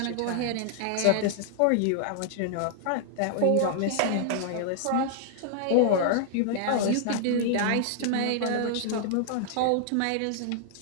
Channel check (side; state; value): both; different; correlation -0.01